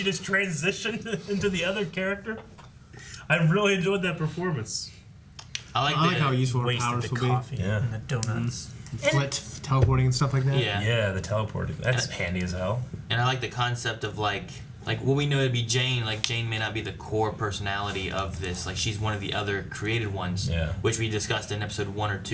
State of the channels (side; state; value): both; identical; correlation 1.00